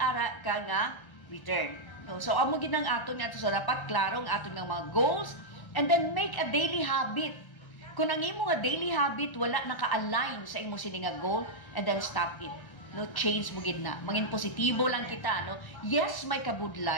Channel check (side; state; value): right; late; 1.3 ms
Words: ara ka nga return. No? So amo ginang aton nga so dapat klaro ang aton nga mga goals and then make a daily habit. Kung ang imo nga daily habit wala naka-align sa imo sini nga goal, and then stop it. No, change mo gid na. Mangin positibo lang kita, no. Yes, may